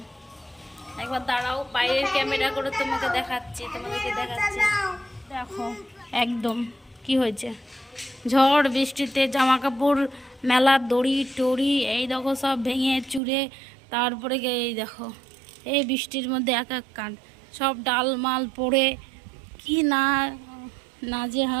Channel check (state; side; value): drops out; left; at 13.2 s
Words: একবার দাঁড়াও, বাইরের ক্যামেরা করে তোমাদেরকে দেখাচ্ছি। দেখো একদম কি হয়েছে। ঝড় বৃষ্টিতে জামা কাপড় মেলার দড়ি টড়ি এই দেখো সব ভেঙে চুরে, তারপরে এই দেখো এই বৃষ্টির মধ্যে এক এক কাণ্ড, সব ডাল মাল পড়ে কি